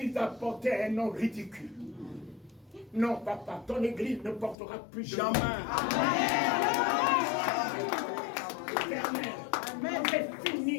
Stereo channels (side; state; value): right; drops out; at 4.5 s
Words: a porté un nom ridicule. Non, papa, ton Église ne portera plus jamais. Amen. C'est